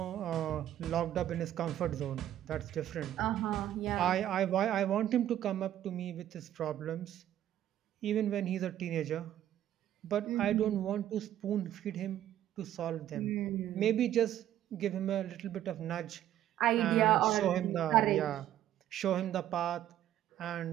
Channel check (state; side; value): quieter; left; 11.8 dB